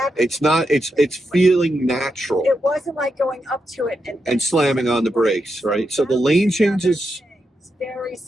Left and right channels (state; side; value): normal; both; correlation 0.85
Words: It's feeling natural. It wasn't like going up to it and slamming on the brakes, right? So the lane changes. It's very